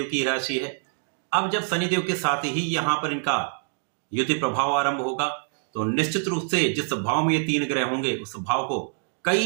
की राशि है। अब जब शनिदेव के साथ ही यहाँ पर इनका युति प्रभाव आरंभ होगा, तो निश्चित रूप से जिस भाव में ये तीन ग्रह होंगे, उस भाव को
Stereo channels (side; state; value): left; silent; 61 dB below the other